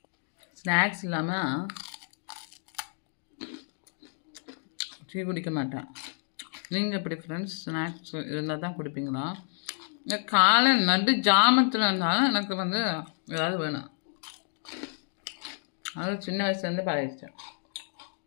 ஸ்நாக்ஸ் இல்லாமல் டீ குடிக்க மாட்டேன். நீங்கள் எப்படி ஃப்ரெண்ட்ஸ்? ஸ்நாக்ஸ் இருந்தால் தான் குடிப்பீங்களா? காலை நடு ஜாமத்தில் இருந்தாலும் எனக்கு ஏதாவது வேணும். அது சின்ன வயசுலேருந்து பழகிச்சேன்.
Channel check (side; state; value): right; silent; digital silence